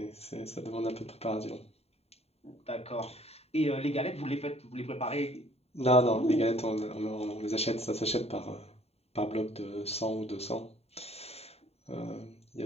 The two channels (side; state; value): right; late; 0.30 ms